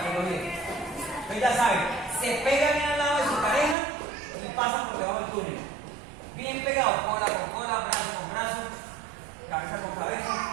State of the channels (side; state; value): left; drops out; at 3.8 s